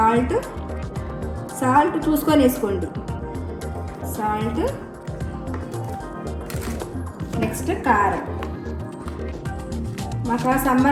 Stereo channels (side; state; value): both; identical; correlation 1.00